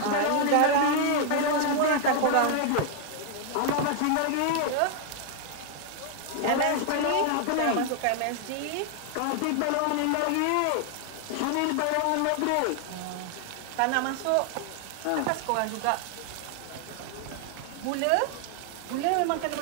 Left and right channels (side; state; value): both; different; correlation 0.00